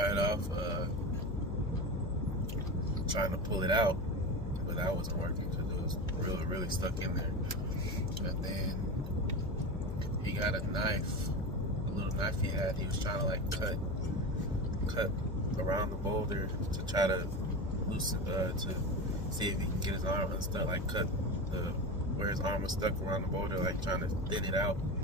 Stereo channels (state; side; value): noise; left; hum, 5 dB below the sound